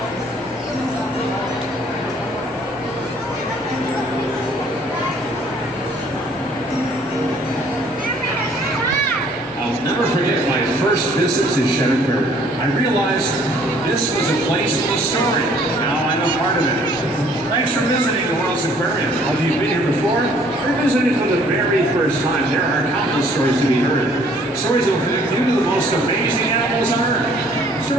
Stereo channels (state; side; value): normal; both; correlation 0.59